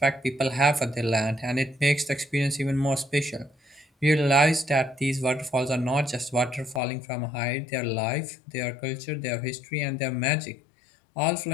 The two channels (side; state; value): right; drops out; at 6.8 s